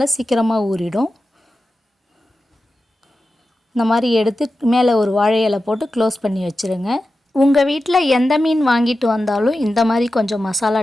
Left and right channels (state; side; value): normal; both; correlation 0.93